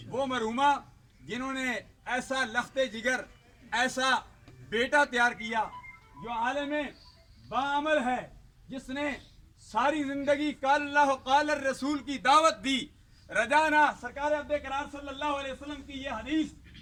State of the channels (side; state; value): both; identical; correlation 1.00